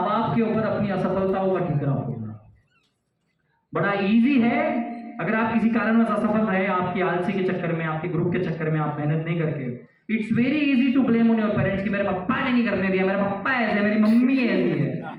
बाप के ऊपर अपनी असफलताओं का ठिकरा फोड़ना। बड़ा इजी है अगर आप किसी कारणवश असफल रहे, आपकी आलसी के चक्कर में, आपके ग्रुप के चक्कर में, आप मेहनत नहीं करके, it's very easy to blame on your parents कि मेरे पापा ने नहीं करने दिया, मेरे पापा ऐसे, मेरी मम्मी ऐसी है।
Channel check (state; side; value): identical; both; correlation 1.00